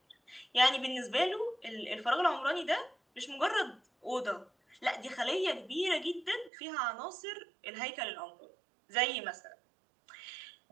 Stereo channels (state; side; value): drops out; left; at 6.5 s